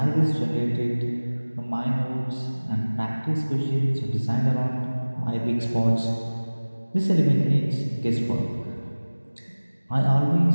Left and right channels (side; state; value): both; inverted; correlation -1.00